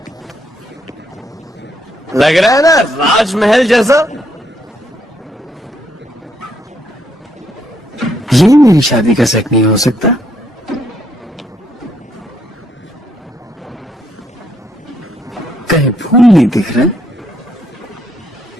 लग रहा है ना राजमहल जैसा? ये मेरी शादी का set नहीं हो सकता। कहीं फूल नहीं दिख रहे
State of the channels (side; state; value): both; normal; correlation 0.73